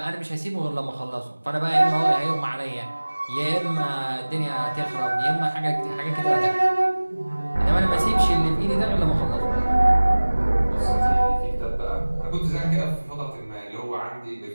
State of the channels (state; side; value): inverted; both; correlation -1.00